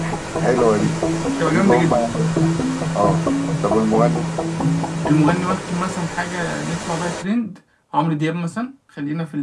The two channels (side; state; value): both; identical; correlation 1.00